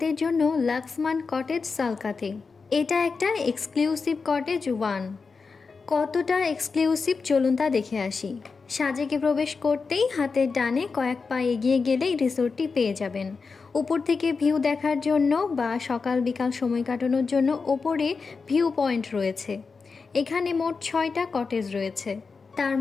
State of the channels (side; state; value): right; quieter; 4.8 dB